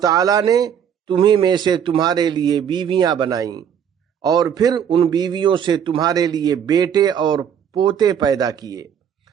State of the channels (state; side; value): quieter; left; 8.4 dB